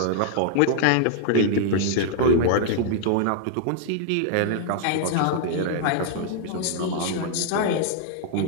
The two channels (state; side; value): different; both; correlation -0.01